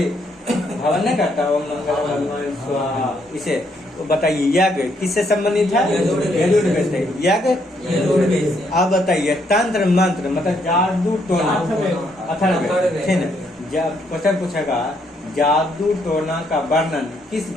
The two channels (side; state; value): both; normal; correlation 0.72